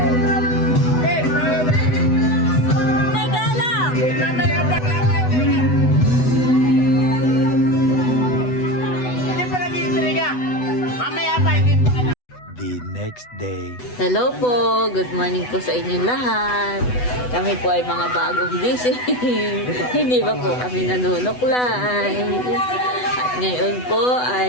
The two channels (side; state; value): right; late; 8.1 ms